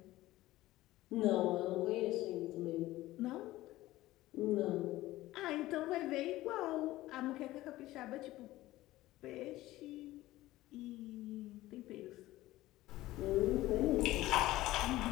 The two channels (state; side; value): quieter; right; 16.7 dB